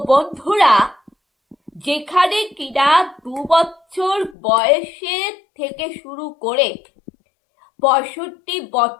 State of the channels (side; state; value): right; drops out; at 4.4 s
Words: বন্ধুরা, যেখানে কিনা 2 বছর বয়সের থেকে শুরু করে 65